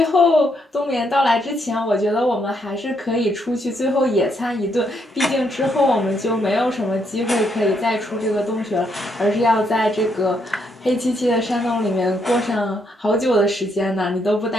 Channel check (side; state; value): both; normal; correlation 0.75